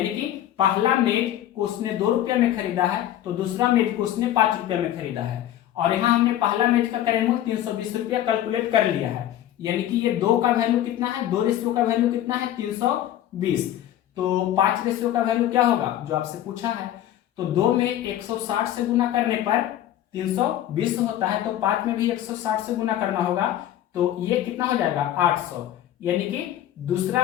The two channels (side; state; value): right; quieter; 12.3 dB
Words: कि पहला मेज को उसने 2 रुपये में खरीदा है, तो दूसरा मेज को उसने 5 रुपये में खरीदा है। और यहाँ हमने पहला मेज का क्रय मूल्य 320 रुपया कैलकुलेट कर लिया है, यानी कि ये 2 का वैल्यू कितना है, 2 रेशियो का वैल्यू कितना है 320, तो 5 रेशियो का वैल्यू क्या होगा जो आपसे पूछा है। तो 2 में 160 से गुना करने पर 320 होता है, तो 5 में भी 160 से गुना करना होगा, तो ये कितना हो जाएगा 800, यानी कि